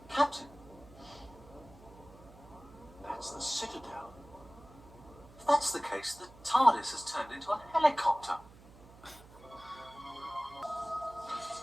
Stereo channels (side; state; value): right; noise; hum, 21 dB below the sound